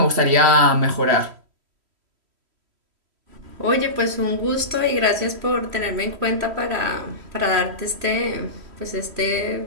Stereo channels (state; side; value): late; left; 3.1 ms